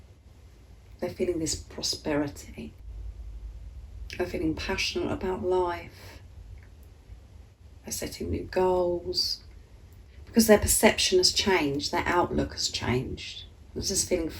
They're feeling this prosperity. They're feeling passionate about life. They're setting new goals because their perception has changed, their outlook has changed. They're just feeling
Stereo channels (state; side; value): identical; both; correlation 1.00